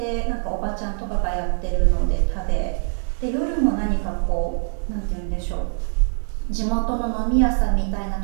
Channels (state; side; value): silent; left; 63 dB below the other